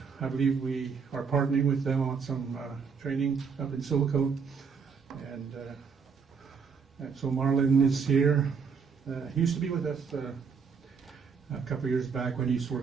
I believe we are partnering with them on some training up in Silicon. And so Marlon is here. He used to be with us a couple of years back when he used to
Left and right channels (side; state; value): left; quieter; 5.9 dB